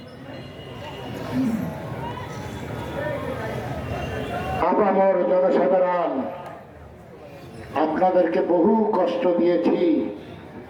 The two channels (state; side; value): identical; both; correlation 1.00